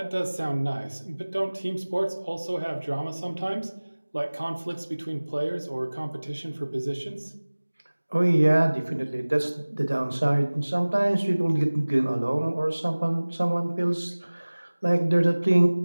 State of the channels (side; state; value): both; inverted; correlation -1.00